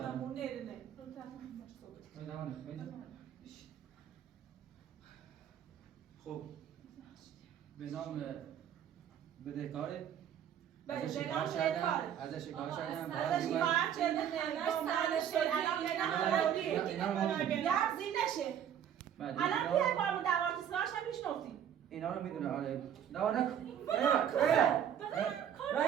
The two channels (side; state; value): left; quieter; 9.4 dB